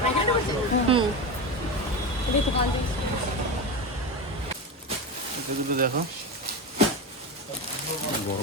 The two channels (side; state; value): both; normal; correlation 0.20